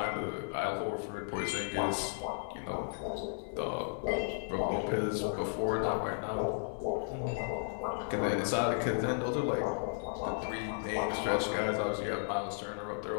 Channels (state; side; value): silent; right; 55 dB below the other